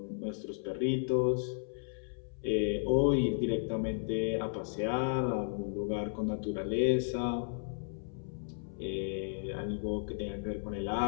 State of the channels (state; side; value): silent; right; 55 dB below the other